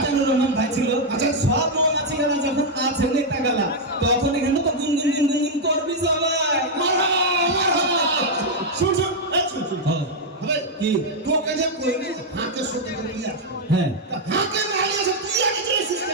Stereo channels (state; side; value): normal; both; correlation -0.01